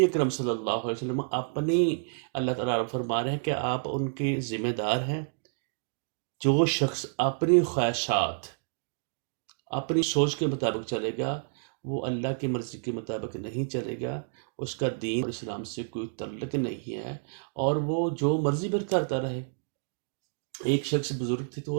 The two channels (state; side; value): silent; left; digital silence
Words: اکرم صلی اللہ علیہ وسلم اللہ تعالیٰ فرما رہے ہیں کہ آپ ان کے ذمہ دار ہیں۔ جو شخص اپنی خواہشات اپنی سوچ کے مطابق چلے گا وہ اللہ کی مرضی کے مطابق نہیں چلے گا، اس کا دین اور اسلام سے کوئی تعلق نہیں ہے، اور وہ جو مرضی پر کرتا رہے۔ ایک شخص بزرگ تھے تو